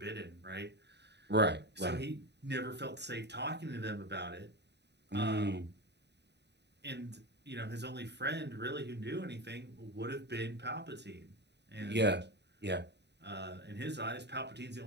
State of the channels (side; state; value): left; late; 0.50 ms